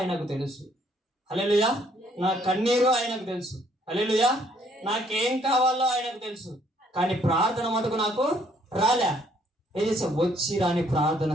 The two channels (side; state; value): both; normal; correlation 0.66